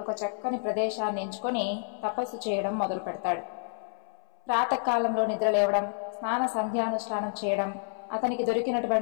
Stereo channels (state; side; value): silent; right; 58 dB below the other